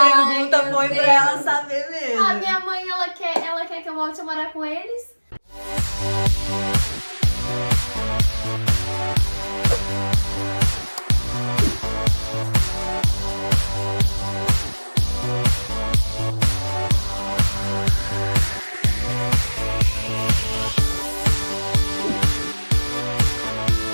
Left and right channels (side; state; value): both; inverted; correlation -1.00